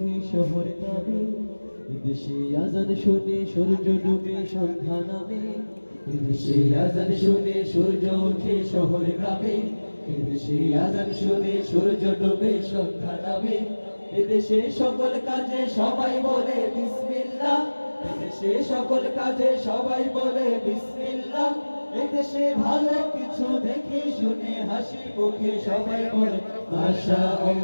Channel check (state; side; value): inverted; both; correlation -1.00